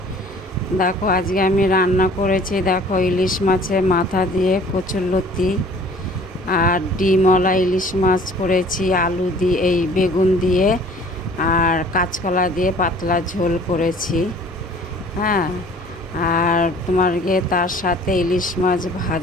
দেখো আজকে আমি রান্না করেছি, দেখো ইলিশ মাছের মাথা দিয়ে কচুরলতি আর ডিমওয়ালা ইলিশ মাছ করেছি, আলু দিয়ে এই বেগুন দিয়ে আর কাঁচকলা দিয়ে পাতলা ঝোল করেছি। হ্যাঁ, আর তোমার গিয়ে তার সাথে ইলিশ মাছ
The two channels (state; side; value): normal; both; correlation 0.51